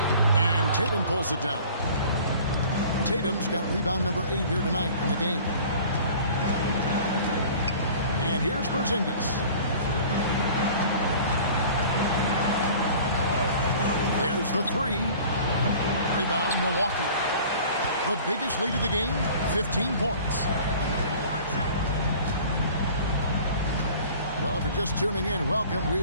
And Tatum pulls it down. Tatum's got rebound number 8 here tonight in the game. And here's Porzingis. There's the 3. Rebound Milwaukee. The biggest lead of the game, 15 points. Well, if you're just tuning in, welcome.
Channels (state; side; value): inverted; both; correlation -0.46